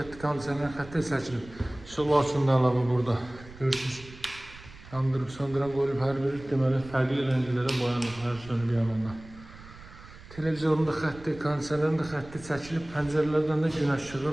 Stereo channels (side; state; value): right; noise; rumble, 18 dB below the sound